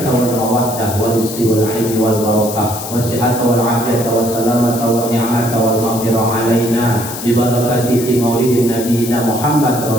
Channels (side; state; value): left; noise; hiss, 9 dB below the sound